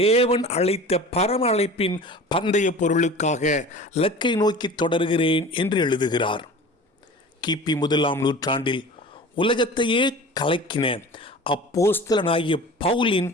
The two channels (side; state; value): both; normal; correlation 0.39